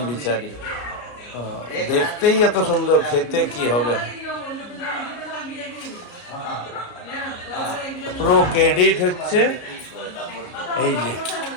বিচারী। দেখতেই এত সুন্দর, খেতে কি হবে। পুরো ক্রেডিট হচ্ছে এই যে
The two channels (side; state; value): right; late; 34 ms